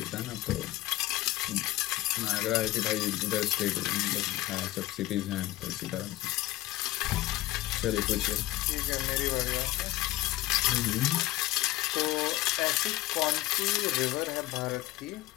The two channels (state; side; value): quieter; right; 17.1 dB